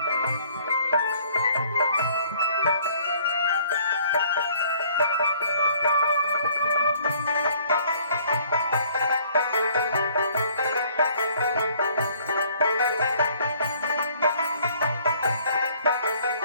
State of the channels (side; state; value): both; inverted; correlation -0.59